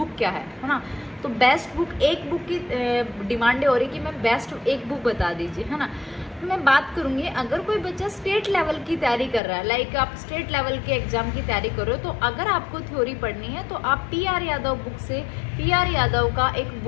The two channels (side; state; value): right; drops out; at 9.4 s